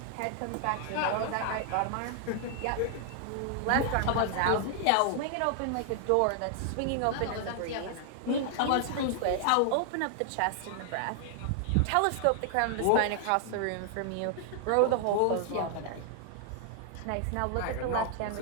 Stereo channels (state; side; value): different; both; correlation 0.00